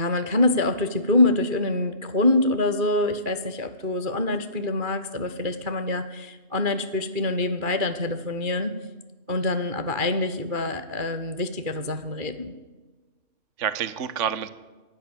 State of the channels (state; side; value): late; left; 2.4 ms